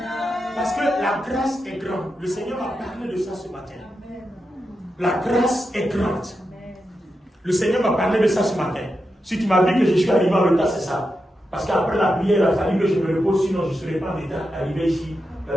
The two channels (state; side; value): normal; both; correlation 0.88